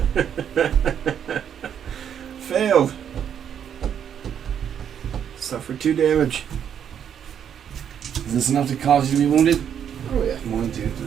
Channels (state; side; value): quieter; left; 8.7 dB